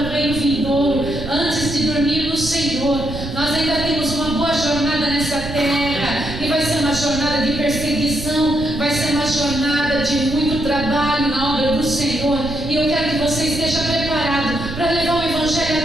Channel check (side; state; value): right; noise; rumble, 9 dB below the sound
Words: o reino vindouro, antes de dormir no Senhor, nós ainda temos uma boa jornada nessa terra. E vai ser uma jornada de perseguição, vai ser uma jornada de muito trabalho na obra do Senhor. E eu quero que você esteja preparado para levar o Evangelho